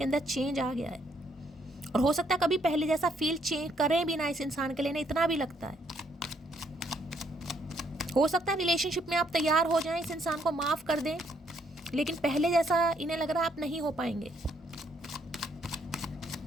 अंदर चेंज आ गया है, और हो सकता है कभी पहले जैसा फील चेंज करें भी ना इस इंसान के लिए, ना इतना भी लगता है। हो सकता है रिलेशनशिप में आप तैयार हो जाएं, इस इंसान को माफ़ कर दें, लेकिन पहले जैसा इन्हें लग रहा है आप नहीं हो पाएंगे।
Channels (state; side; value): normal; both; correlation 0.70